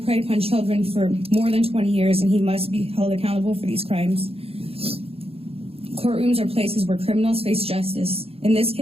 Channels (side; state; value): left; late; 0.28 ms